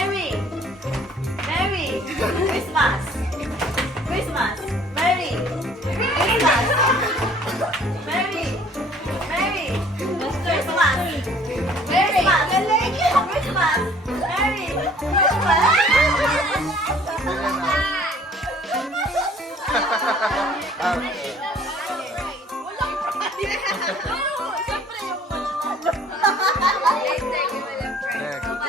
Mary! Christmas! Christmas! Mary! Christmas! Mary! Mary! Christmas! Mary! Christmas! Mary!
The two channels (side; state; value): both; normal; correlation 0.55